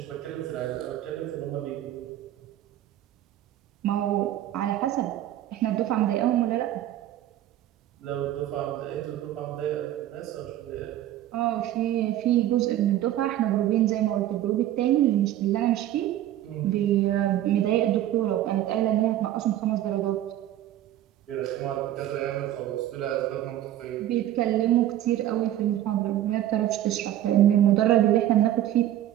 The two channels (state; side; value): quieter; left; 12.7 dB